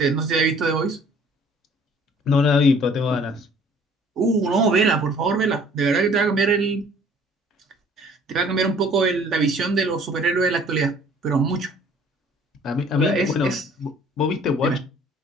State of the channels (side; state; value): both; normal; correlation 0.54